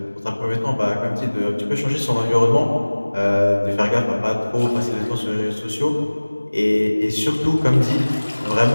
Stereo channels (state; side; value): inverted; both; correlation -1.00